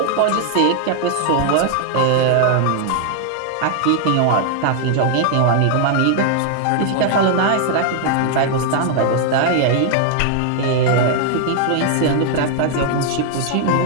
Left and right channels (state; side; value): different; both; correlation 0.00